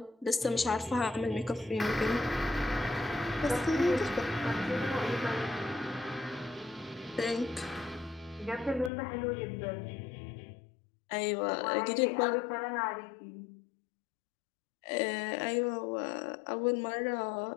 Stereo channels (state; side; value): drops out; right; at 8.9 s